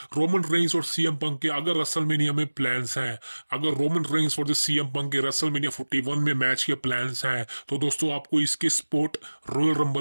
रोमन रेंग्स और सीएम पंक के अगर रेसलमेनिया में प्लान्स हैं, अगर रोमन रेंग्स और सीएम पंक के रेसलमेनिया 41 में मैच के प्लान्स हैं, तो दोस्तों आपको इसके स्पॉट रॉयल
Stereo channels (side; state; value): both; inverted; correlation -1.00